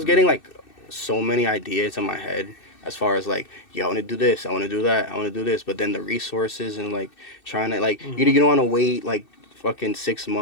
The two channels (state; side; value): late; right; 2.6 ms